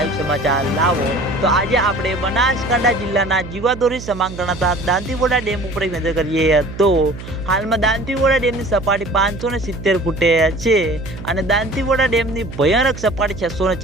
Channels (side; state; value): right; noise; hum, 12 dB below the sound